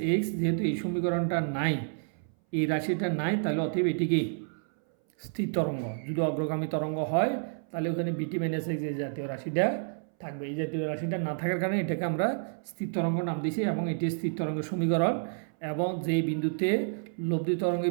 এক্স যেহেতু এই সমীকরণটা নাই, এই রাশিটা নাই, তাহলে অতএব এটিকে স্থির তরঙ্গ। যদি অগ্রগামী তরঙ্গ হয় তাহলে ওখানে বিটি মাইনাস এক্স এই জাতীয় রাশিটা থাকবে। এই জাতীয় রাশিটা না থাকার কারণে এটাকে আমরা স্থির তরঙ্গ নাম দিয়েছি এবং এটি স্থির তরঙ্গের সমীকরণ। এবং যেই বিন্দুতে লব্ধি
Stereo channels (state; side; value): silent; left; 58 dB below the other